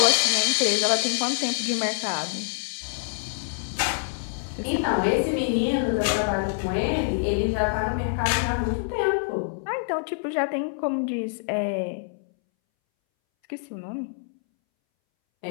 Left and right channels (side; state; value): right; silent; 61 dB below the other